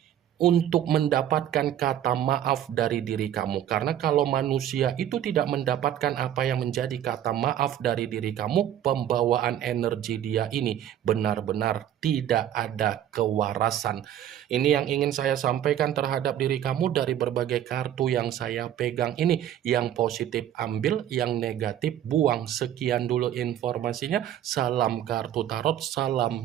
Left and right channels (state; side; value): quieter; left; 11.0 dB